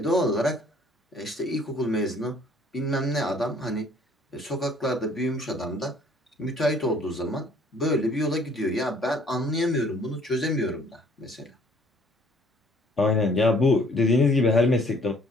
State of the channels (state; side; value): normal; both; correlation 0.59